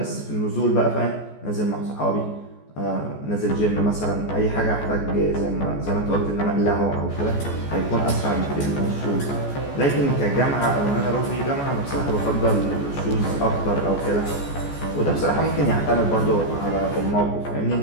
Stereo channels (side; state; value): right; late; 14 ms